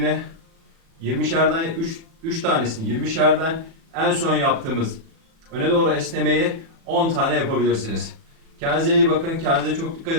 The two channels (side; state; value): left; late; 36 ms